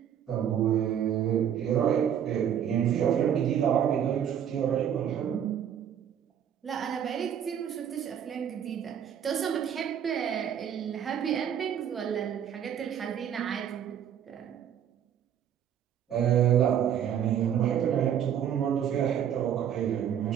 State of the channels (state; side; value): quieter; left; 9.2 dB